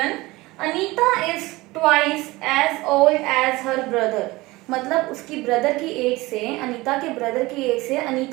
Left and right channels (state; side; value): quieter; left; 20.8 dB